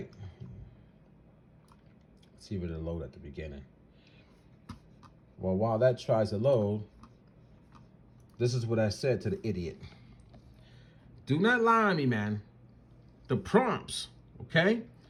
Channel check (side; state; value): both; identical; correlation 1.00